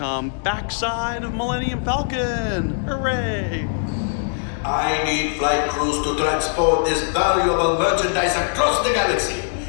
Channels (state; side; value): silent; right; digital silence